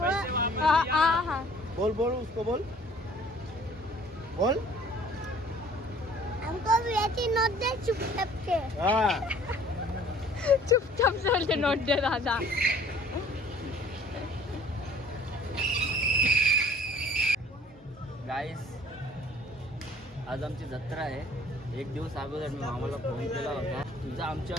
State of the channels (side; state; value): both; normal; correlation 0.54